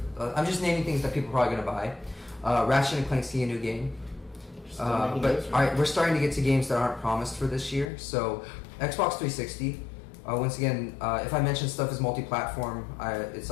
I'm just naming things that people are probably gonna buy. Ratchet and Clank's a new game. But all right, we're starting to get to games that aren't promised for this year. So Xbox 360. Once again, if I mention stuff is multi-platform, it's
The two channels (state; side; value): drops out; right; at 7.9 s